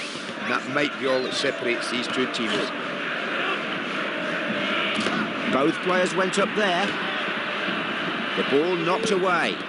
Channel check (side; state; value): both; identical; correlation 1.00